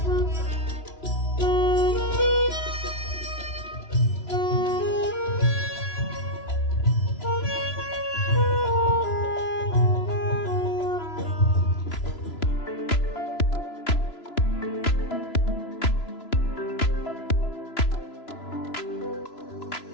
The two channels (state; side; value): late; right; 3.0 ms